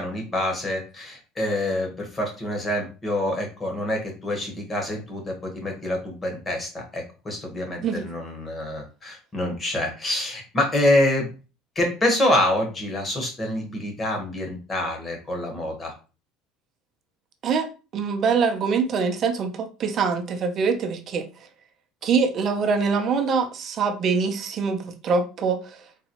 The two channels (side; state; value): both; normal; correlation 0.60